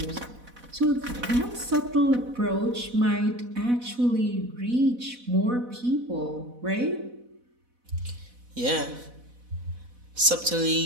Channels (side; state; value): left; late; 4.1 ms